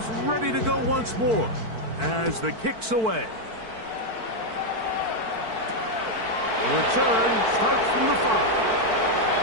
ready to go once more as the kick's away. The return starts from the 5.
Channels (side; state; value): left; late; 4.5 ms